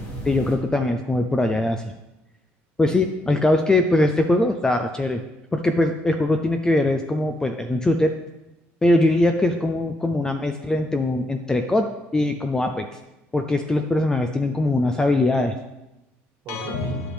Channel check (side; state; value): both; normal; correlation 0.79